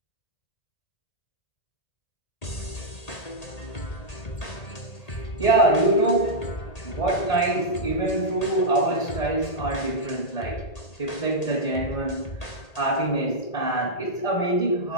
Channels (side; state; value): right; late; 1.8 ms